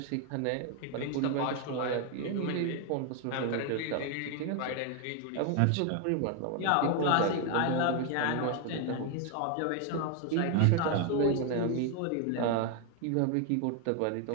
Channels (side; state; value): both; different; correlation 0.01